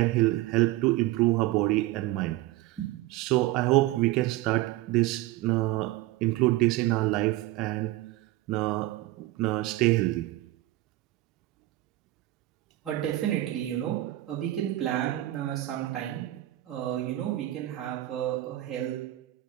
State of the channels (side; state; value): left; quieter; 16.5 dB